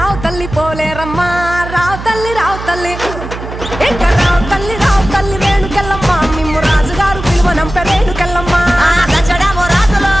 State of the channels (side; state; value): right; noise; hum, 10 dB below the sound